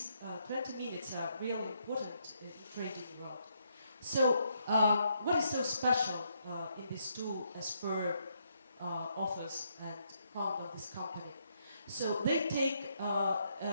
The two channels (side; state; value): both; inverted; correlation -0.75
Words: 20 minutes are really important in the trading world. So what is so special in this tool as per authors and founder of this company? So they take